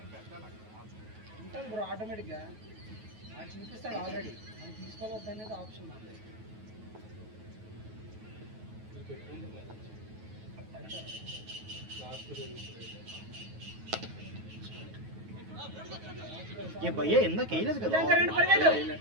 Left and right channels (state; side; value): late; left; 9.3 ms